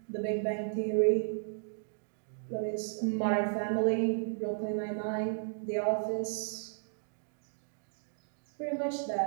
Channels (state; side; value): silent; left; digital silence